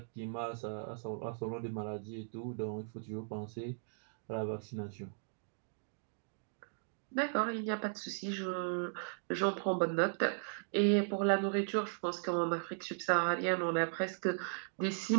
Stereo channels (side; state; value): left; silent; digital silence